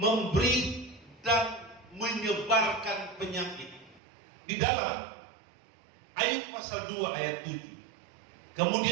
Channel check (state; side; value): drops out; left; at 4.0 s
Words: dan menyebarkan penyakit. Di dalam Ayub pasal 2 ayat 7.